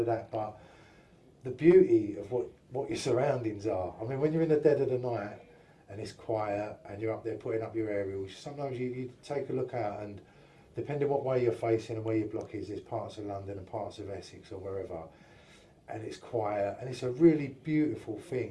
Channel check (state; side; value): identical; both; correlation 1.00